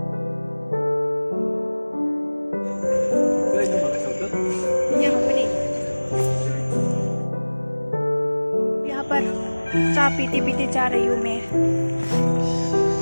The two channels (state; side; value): inverted; both; correlation -1.00